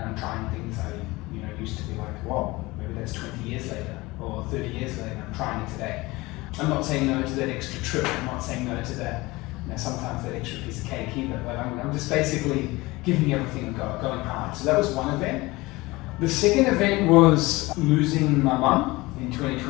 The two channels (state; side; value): quieter; right; 21.5 dB